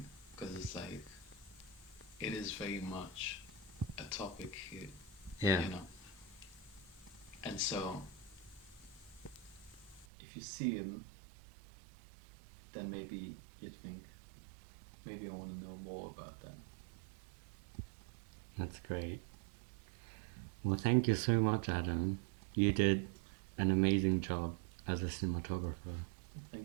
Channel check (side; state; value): left; drops out; at 10.1 s